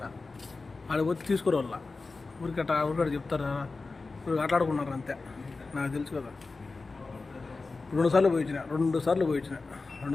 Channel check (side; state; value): right; quieter; 3.8 dB